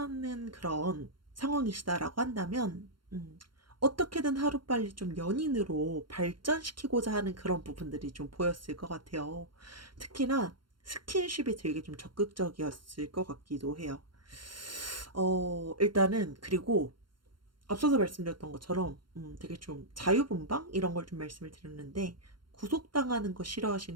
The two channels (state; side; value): late; left; 0.72 ms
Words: 그런 상황이시다라고 한다면 어떻게든 하루빨리 좀 연인으로 발전시키고자 하는 그런 부분들이 좀 보였을 것 같아요. 특히나 스킨십이 되게 좀 적극적이었을 것 같기도 해요. 일단은 그리고 앞서서 말씀드렸던 것처럼 되게 좀 자유분방 이런 걸 좀 말씀을 드렸는데 구속당하는 거